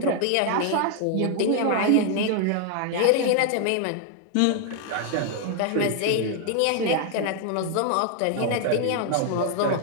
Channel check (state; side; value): different; both; correlation 0.00